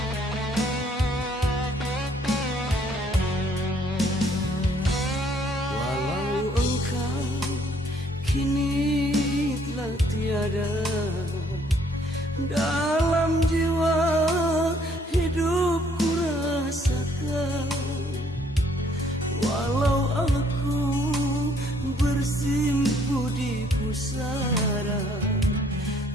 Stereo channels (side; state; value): both; normal; correlation 0.64